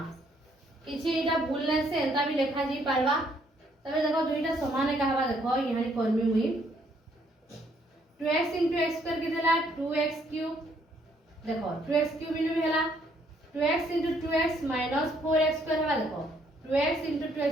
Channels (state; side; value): normal; both; correlation 0.68